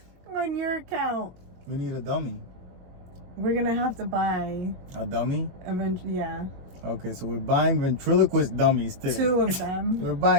On your account. We need a dummy. We're gonna have to buy A dummy? yeah, Okay, so we're buying ventriloquist dummies today. 2 of them. We're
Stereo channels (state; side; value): late; left; 22 ms